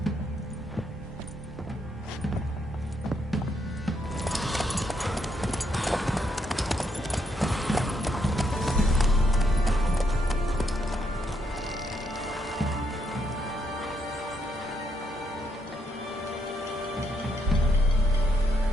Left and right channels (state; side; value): normal; both; correlation 0.76